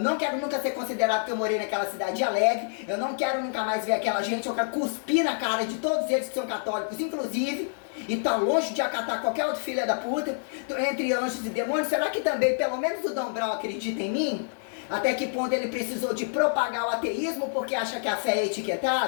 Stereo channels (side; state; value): right; silent; digital silence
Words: quero nunca ser considerado que eu morei naquela cidade alegre, eu não quero nunca mais ver aquela gente, eu quero cuspir na cara de todos eles que são católicos, inclusive, e tá longe de acatar qualquer outro filho da puta, entre anjos e demônios. Será que também, pelo menos o Dom Brown acredita em mim? Até que ponto ele precisou de propagar o ateísmo porque acha que a fé é